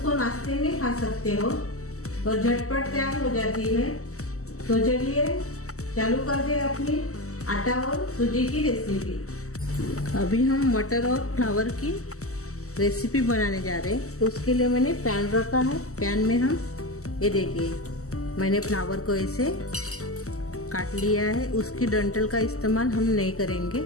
नाश्ते में खा सकते हो और झटपट तैयार हो जाती है। तो चलिए चालू करते हैं अपनी आटा और सूजी की रेसिपी। अभी हम मटर और फ्लावर की रेसिपी बनाने जा रहे हैं। तो उसके लिए मैंने पैन रखा है। पैन में हम ये देखिए, मैंने फ्लावर को ऐसे काट लिया है। उसकी डंठल का इस्तेमाल हम नहीं करेंगे।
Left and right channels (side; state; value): right; late; 0.64 ms